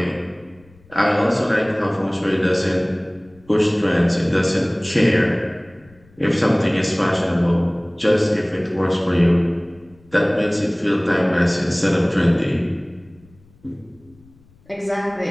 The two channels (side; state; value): left; noise; rumble, 29 dB below the sound